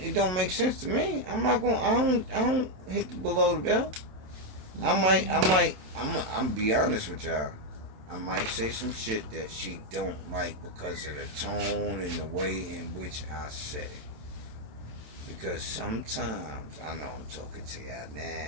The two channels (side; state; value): left; late; 27 ms